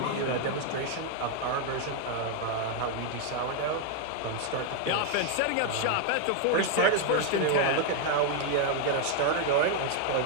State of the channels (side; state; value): both; different; correlation 0.00